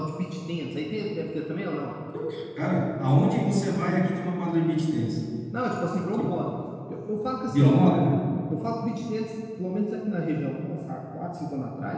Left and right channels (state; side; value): identical; both; correlation 1.00